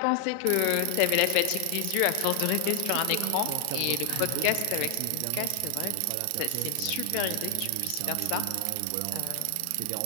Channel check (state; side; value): different; both; correlation 0.00